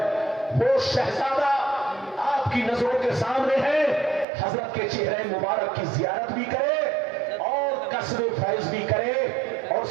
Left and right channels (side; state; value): left; drops out; at 4.2 s